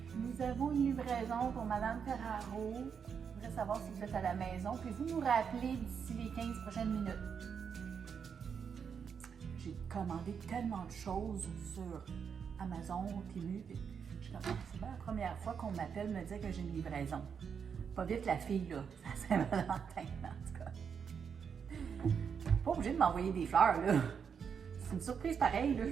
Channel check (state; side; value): quieter; left; 6.8 dB